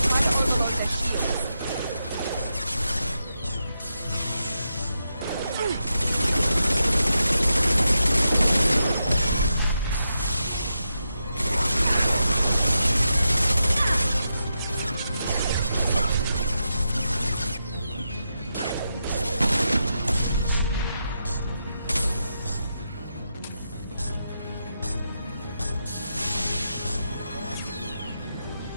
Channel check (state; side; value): inverted; both; correlation -0.86